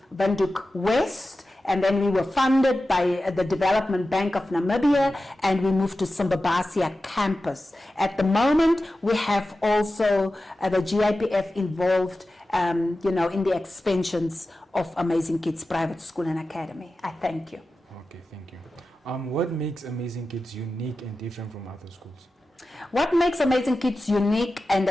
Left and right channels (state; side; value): normal; both; correlation 0.94